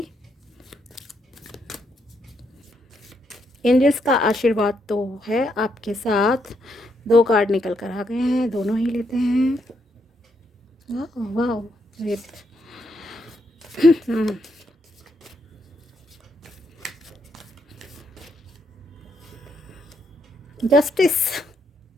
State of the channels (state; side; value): normal; both; correlation 0.77